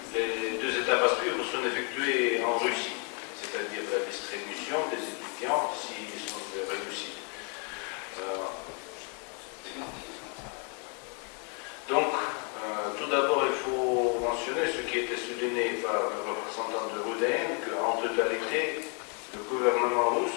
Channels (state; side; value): quieter; right; 38.1 dB